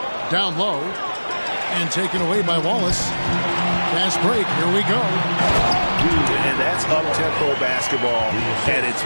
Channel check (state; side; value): inverted; both; correlation -1.00